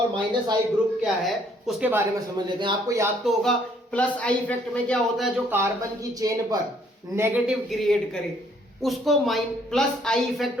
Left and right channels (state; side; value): normal; both; correlation 0.65